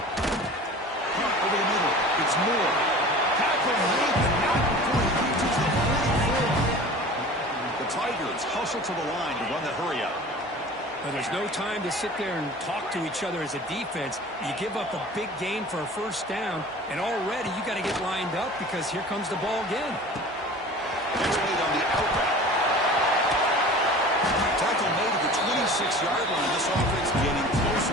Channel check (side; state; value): both; normal; correlation 0.40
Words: Over the middle, it's Moore. Tackle made, but not before he reaches the 44. The Tigers hustle to the line to run the hurry up. Now, there's no time to sit there and talk to each other as a defense. You give up a big gain for a first down, and already you got to get lined up because here comes the ball again. It's made on the out route. Tackle made at the 26-yard line. This offense getting